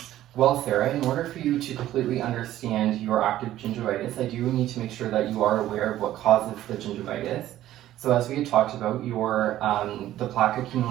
Well, Sarah, in order for you to completely understand your active gingivitis, I do need to make sure that you are aware of what causes the gingivitis. So as we had talked about, the plaque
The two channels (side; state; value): left; quieter; 13.6 dB